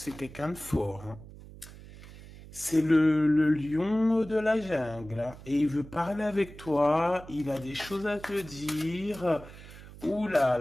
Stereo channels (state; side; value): noise; right; hum, 17 dB below the sound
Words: quelqu'un de fort, hein. C'est le lion de la jungle, hein. Et il veut parler avec toi. Il a des choses à te dire. Ouh là